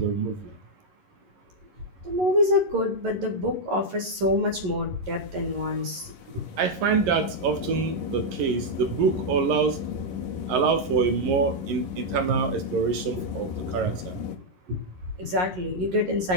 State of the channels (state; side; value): late; left; 11 ms